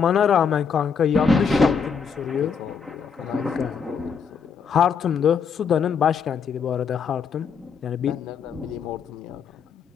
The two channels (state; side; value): quieter; right; 6.3 dB